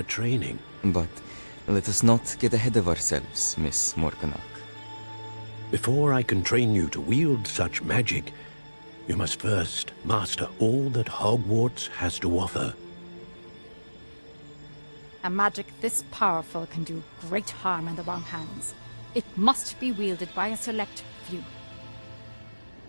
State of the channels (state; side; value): inverted; both; correlation -1.00